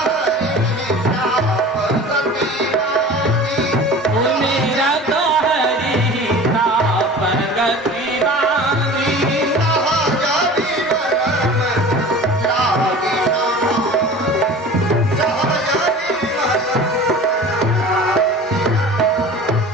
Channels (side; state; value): both; normal; correlation 0.39